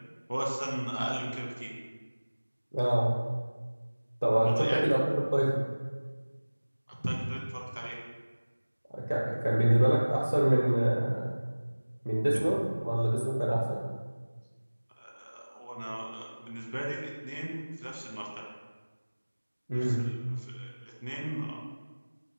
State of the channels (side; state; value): both; inverted; correlation -1.00